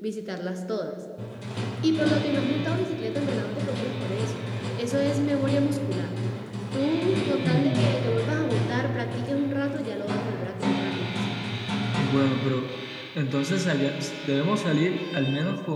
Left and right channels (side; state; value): both; identical; correlation 1.00